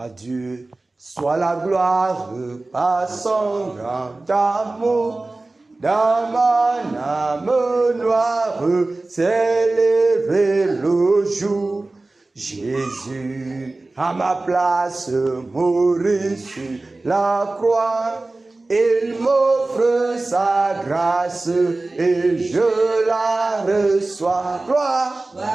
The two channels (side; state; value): left; quieter; 3.1 dB